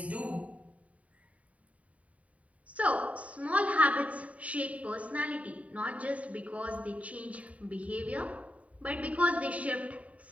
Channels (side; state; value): left; late; 0.068 ms